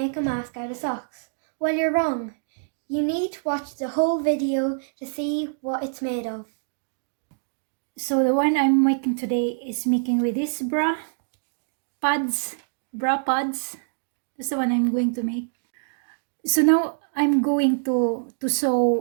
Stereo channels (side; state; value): left; silent; digital silence